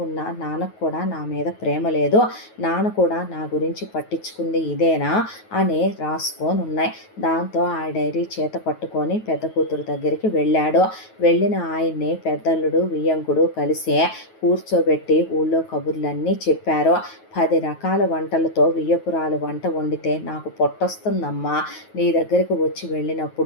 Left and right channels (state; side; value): late; right; 9.3 ms